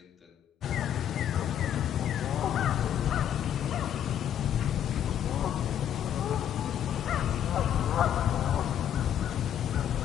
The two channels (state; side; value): quieter; right; 9.9 dB